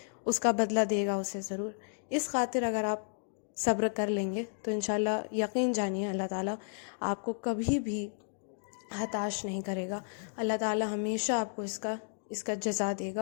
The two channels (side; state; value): right; silent; digital silence